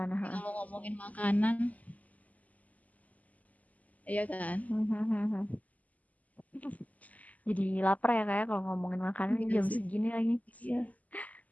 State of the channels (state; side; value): late; right; 0.075 ms